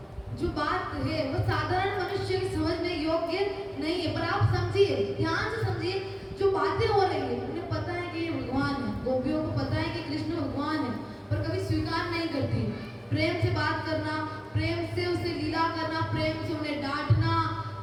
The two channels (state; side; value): identical; both; correlation 1.00